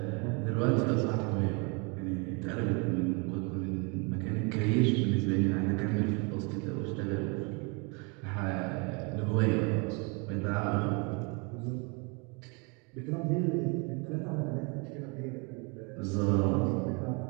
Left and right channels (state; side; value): quieter; left; 32.2 dB